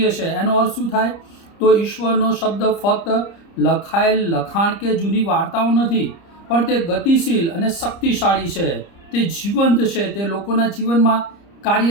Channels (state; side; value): late; right; 30 ms